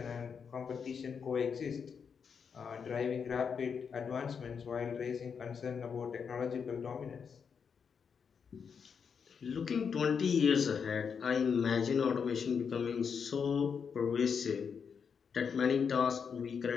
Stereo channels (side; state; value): right; quieter; 6.5 dB